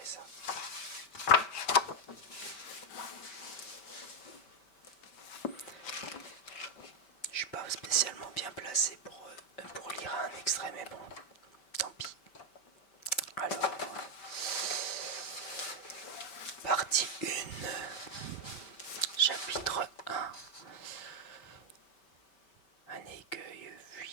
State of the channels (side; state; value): right; late; 5.1 ms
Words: ça. Je suis pas spécialement bien placé pour lire un extrait, mais bon, tant pis. Alors, partie 1, chapitre 1. Un écueil